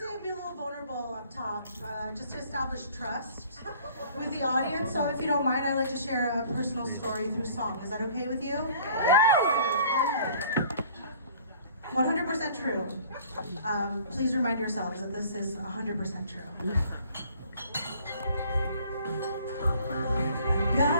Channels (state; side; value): inverted; both; correlation -0.53